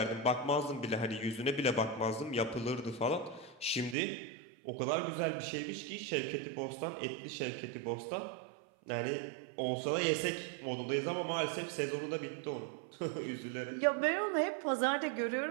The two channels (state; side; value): drops out; left; at 4.0 s